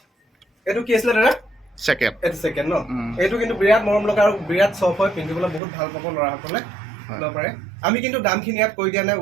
এইটো কি আছিলে দাদা? ছেকেণ্ড। এইটো ছেকেণ্ড ন? এইটো কিন্তু বিৰাট মৰম লগা আৰু বিৰাট চফ্ট হয়, পিন্ধিবলৈ বহুত ভাল পাব ল'ৰাসকলে ল'ব পাৰে। আমি কিন্তু দামখিনি ইয়াত কৈ দিয়া নাই,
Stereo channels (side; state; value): left; drops out; at 5.6 s